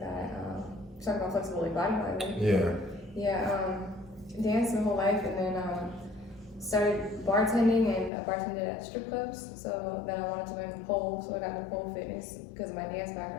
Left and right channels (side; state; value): right; drops out; at 8.1 s